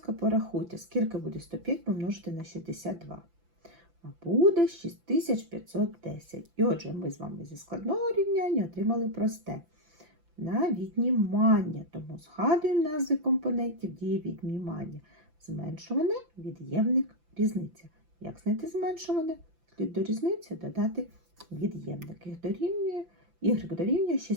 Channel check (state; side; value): late; left; 5.9 ms